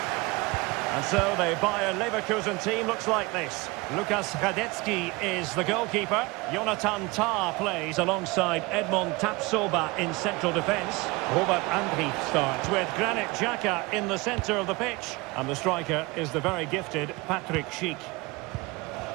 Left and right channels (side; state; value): left; quieter; 24.3 dB